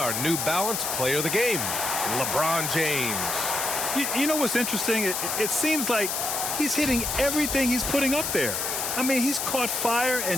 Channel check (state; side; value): noise; left; hiss, 1 dB below the sound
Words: New Balance Player of the Game, LeBron James. You know what's interesting? It seems like he's hitting everything he's putting up there. I mean, he's caught fire